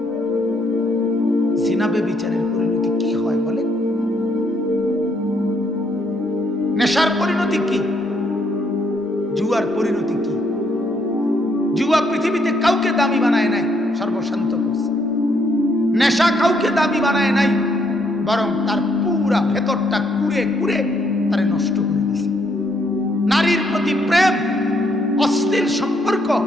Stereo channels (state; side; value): normal; both; correlation 0.72